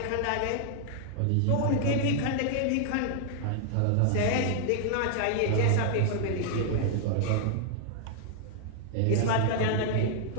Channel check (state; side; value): different; both; correlation -0.01